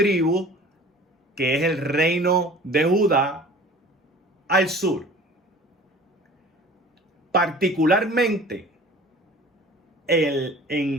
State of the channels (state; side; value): normal; both; correlation 0.45